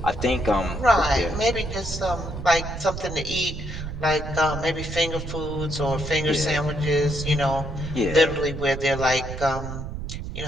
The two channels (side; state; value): right; noise; rumble, 7 dB below the sound